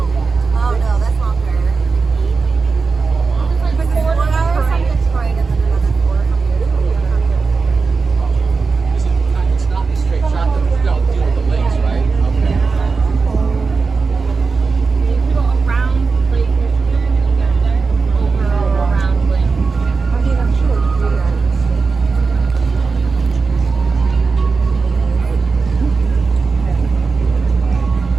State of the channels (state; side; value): quieter; left; 4.5 dB